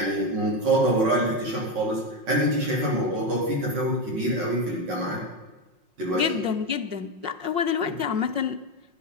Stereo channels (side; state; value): left; late; 5.5 ms